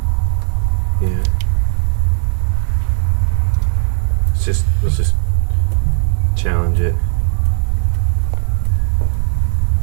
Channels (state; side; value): silent; left; 56 dB below the other